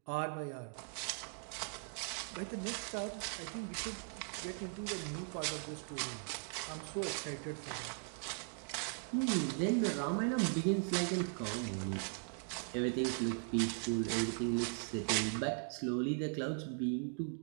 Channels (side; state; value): left; silent; 52 dB below the other